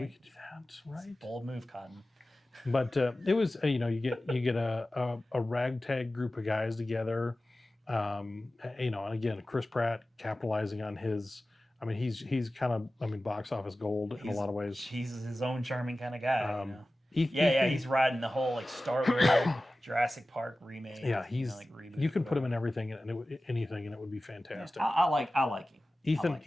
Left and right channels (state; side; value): normal; both; correlation 0.96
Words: could do that, right? Bold move, Cotton. But it was you get a ragtag group of guys together. And again, Chris Pratt capitalizing on his. I mean, he's kind of box office gold in a lot of ways. He's his own charming kind of guy. He's riding the whole Star Wars Jurassic Park remake. Yeah, you can put him in everything and it would be fantastic. Yeah, I like him.